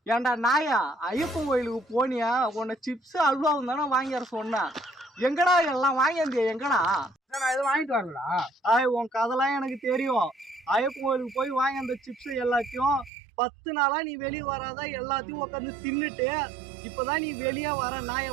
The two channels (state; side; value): drops out; left; at 13.1 s